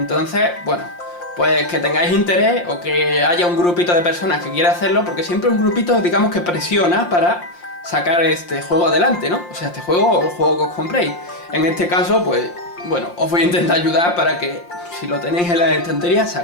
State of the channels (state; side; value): late; right; 5.7 ms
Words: bueno, pues que tengáis interés o que haya un grupito de personas que quiera hacerlo, porque siempre un grupito, digamos, que presiona para sacar este juego adelante, ¿no? O sea, este juego o el juego que os compréis. En este caso, pues, bueno, os voy a intentar ayudar para que, si lo tenéis en las estanterías,